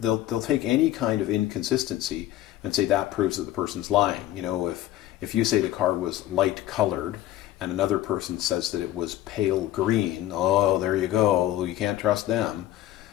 they'll take any kind of inconsistency and say that proves that the person's lying. If you say the car was light colored and another person says that it was pale green, oh, there you go, you can't trust them.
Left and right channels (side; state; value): right; quieter; 14.0 dB